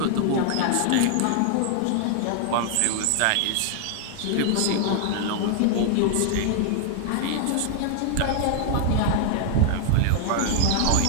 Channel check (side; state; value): both; different; correlation 0.00